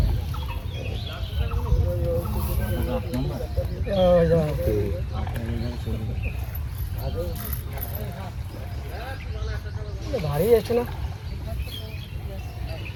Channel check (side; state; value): both; identical; correlation 1.00